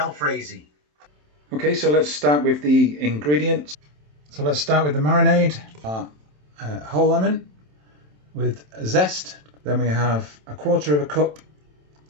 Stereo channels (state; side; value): late; left; 27 ms